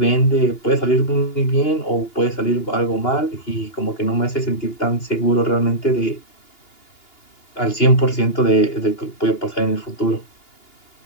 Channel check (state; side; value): late; right; 2.8 ms